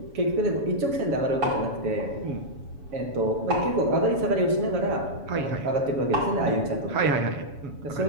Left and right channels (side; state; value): left; late; 7.1 ms